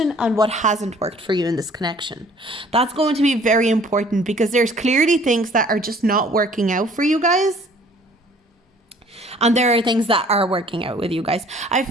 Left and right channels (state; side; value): normal; both; correlation 0.55